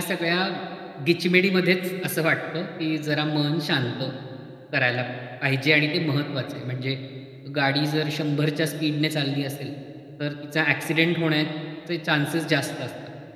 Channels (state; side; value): identical; both; correlation 1.00